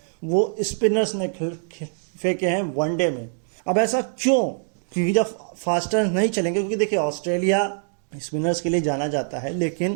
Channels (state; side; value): silent; left; digital silence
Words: वो स्पिनर्स ने फेंके हैं वनडे में। अब ऐसा क्यों? क्योंकि जब फास्टर नहीं चलेंगे, क्योंकि देखिए ऑस्ट्रेलिया स्पिनर्स के लिए जाना जाता है